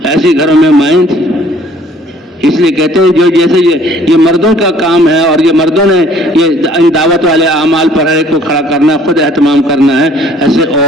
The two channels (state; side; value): normal; both; correlation 0.57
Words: ایسے گھروں میں مائیں تھی۔ اس لیے کہتے ہیں جو جیسے یہ مردوں کا کام ہے اور یہ مردوں نے یہ دعوت والے اعمال پر ہے کو کھڑا کرنا، خود اہتمام کرنا ہے، ایسے